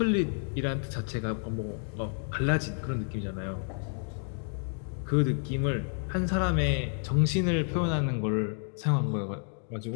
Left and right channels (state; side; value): silent; right; 58 dB below the other